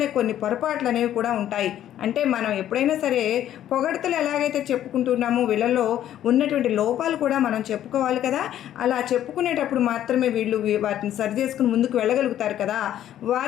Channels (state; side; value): quieter; right; 11.6 dB